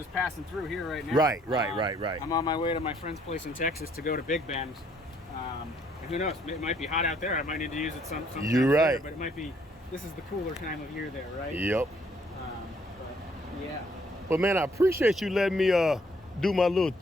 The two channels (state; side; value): normal; both; correlation 0.65